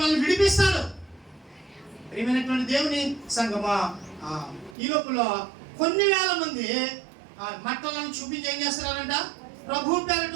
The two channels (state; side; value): drops out; left; at 4.8 s